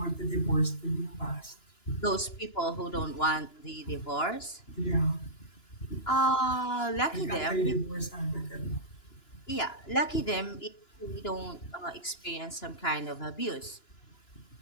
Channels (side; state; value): right; late; 2.9 ms